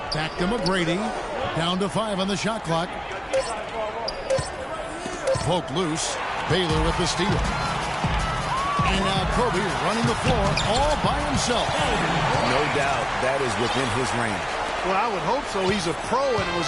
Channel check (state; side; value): identical; both; correlation 1.00